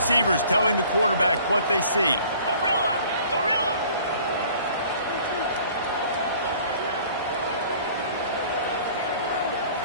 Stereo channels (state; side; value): inverted; both; correlation -0.52